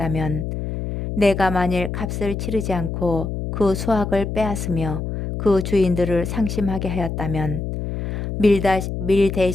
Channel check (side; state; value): left; noise; hum, 4 dB below the sound